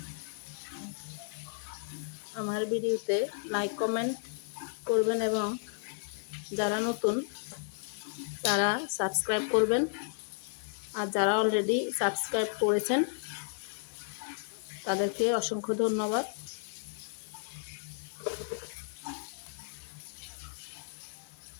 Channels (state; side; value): silent; right; digital silence